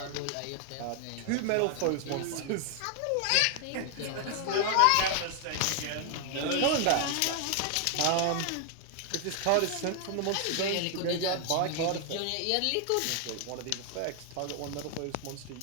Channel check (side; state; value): both; different; correlation 0.00